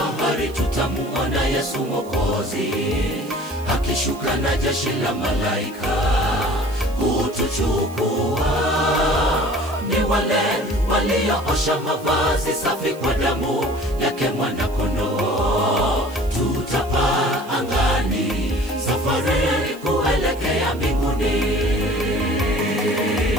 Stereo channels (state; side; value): noise; right; hiss, 22 dB below the sound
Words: tutamuona Yesu Mwokozi akishuka na jeshi la malaika kutuchukua. Ni wale walioosha mavazi safi kwa damu yake mwana-kondoo. Tutapaa angani, safari kuelekea mbinguni.